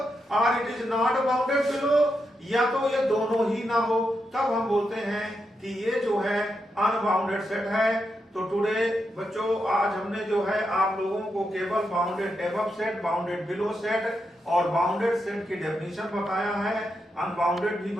or it is not bounded below, या तो ये दोनों ही ना हो, तब हम बोलते हैं कि ये जो है अनबाउंडेड सेट है। तो टुडे बच्चों आज हमने जो है आप लोगों को केवल bounded above set, bounded below set और बाउंडेड सेट की डेफिनेशन बताया है। अनबाउंडेड भी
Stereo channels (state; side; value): normal; both; correlation 0.84